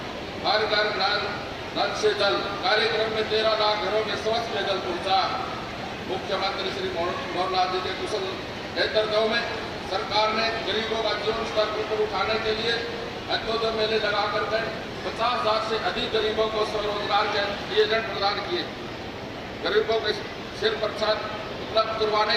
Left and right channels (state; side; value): identical; both; correlation 1.00